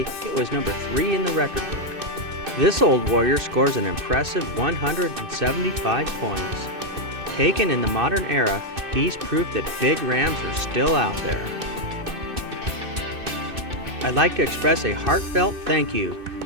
it was number 3 in the record book. This old warrior scores an impressive 175 points. Taken in the modern era, he's proof that big rams are still out there. I'd like to express a heartfelt thank you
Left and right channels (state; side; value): late; left; 2.6 ms